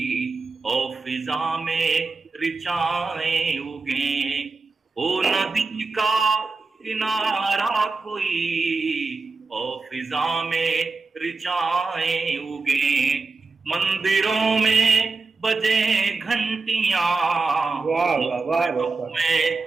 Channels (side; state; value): left; quieter; 4.0 dB